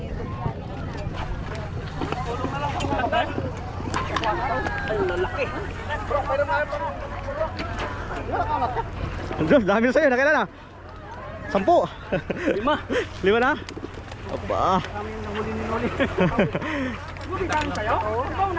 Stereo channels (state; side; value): identical; both; correlation 1.00